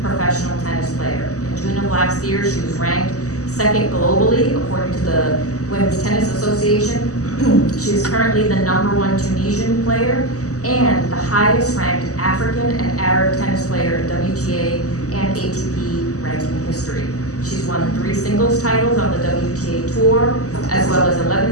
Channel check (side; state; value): right; late; 0.66 ms